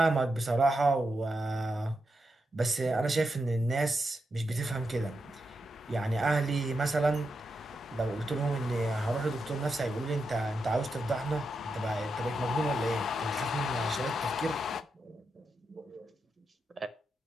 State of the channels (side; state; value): both; normal; correlation 0.85